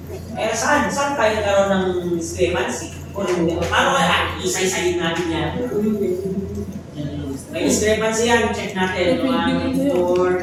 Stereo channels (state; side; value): identical; both; correlation 1.00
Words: Eh saan tayo nagkaroon ng discrepancy? Paano kaya isa-isayin natin yan? May discrepancy yan, check natin. 1,